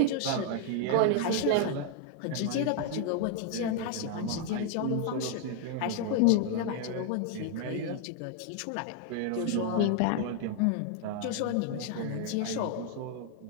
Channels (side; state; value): both; different; correlation 0.00